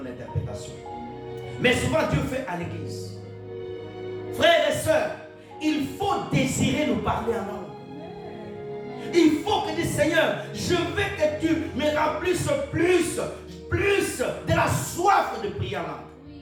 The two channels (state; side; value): identical; both; correlation 1.00